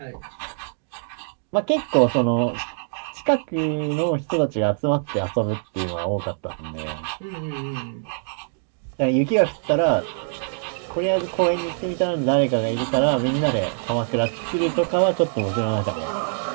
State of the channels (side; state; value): left; silent; digital silence